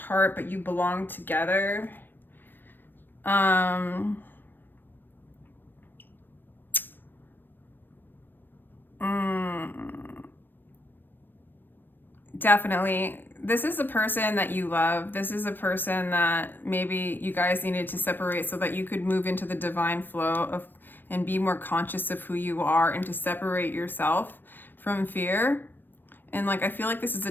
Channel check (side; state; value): right; late; 0.094 ms